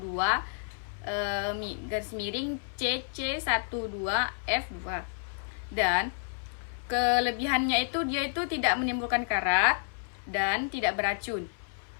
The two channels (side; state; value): right; silent; 58 dB below the other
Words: garis miring CC12F2. Dan kelebihannya itu dia itu tidak menimbulkan karat dan tidak beracun.